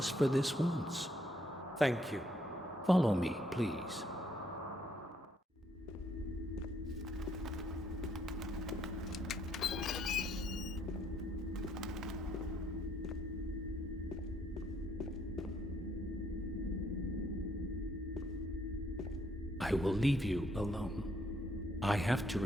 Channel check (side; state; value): both; normal; correlation 0.70